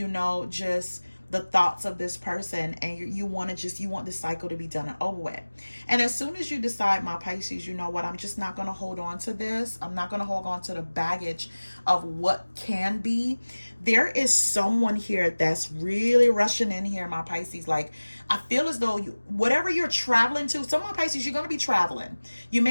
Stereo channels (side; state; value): both; inverted; correlation -1.00